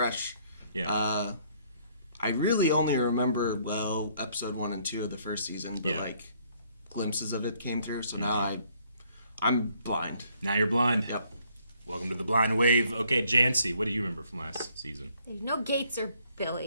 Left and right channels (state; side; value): inverted; both; correlation -0.66